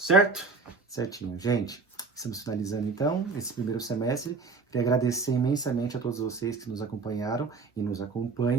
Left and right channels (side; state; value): left; quieter; 4.3 dB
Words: Certinho. Gente, estamos finalizando então esse primeiro semestre. Queria agradecer imensamente a todos vocês que nos acompanharam e nos